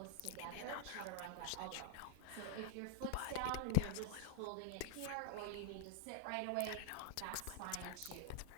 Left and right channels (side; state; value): both; different; correlation -0.01